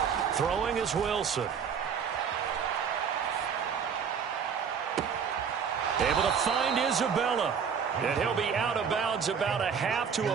Throwing is Wilson. Able to find Isabella. And he'll be out of bounds about a half to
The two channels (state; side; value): quieter; left; 6.9 dB